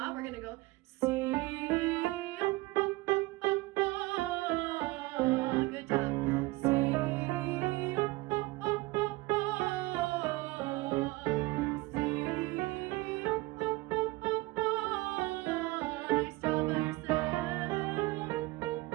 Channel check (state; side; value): quieter; left; 21.3 dB